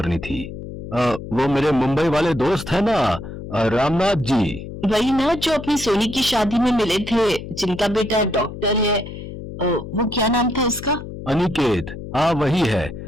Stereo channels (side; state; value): left; noise; hum, 10 dB below the sound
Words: थी। वो मेरे मुंबई वाले दोस्त है ना, रामनाथ जी। वही ना जो अपनी सोनी की शादी में मिले थे, जिनका बेटा डॉक्टर है। वो क्या नाम था उसका? अनिकेत। हाँ वही है।